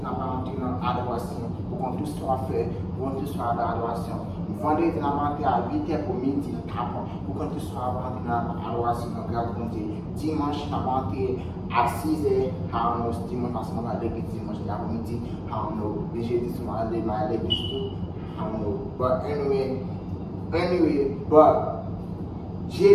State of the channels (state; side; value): identical; both; correlation 1.00